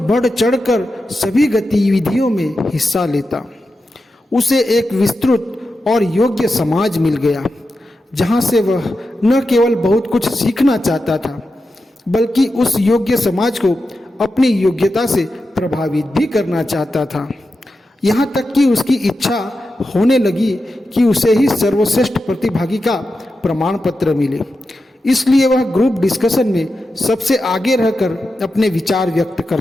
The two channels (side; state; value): both; normal; correlation 0.90